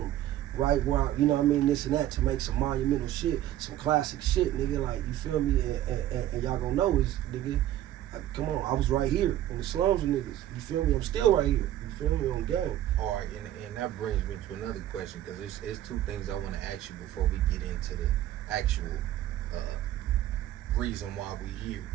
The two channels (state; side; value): quieter; left; 12.9 dB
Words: right where you know what I mean, this and that, to make some monumental shit, some classic shit, nigga. Like, you feel me? And y'all gonna know is, nigga, come on, I was right here in the slums with niggas. You feel me? I'm still right here. You feel me? On game. All right, and that brings me to another question, because it's two things I want to ask you before we get into the actual reason why we here.